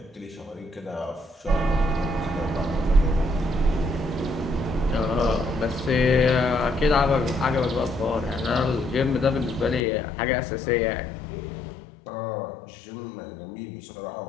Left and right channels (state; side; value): drops out; right; at 9.9 s